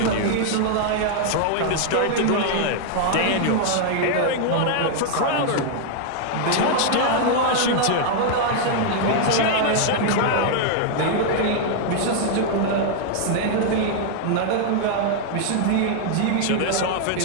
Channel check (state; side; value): different; both; correlation 0.00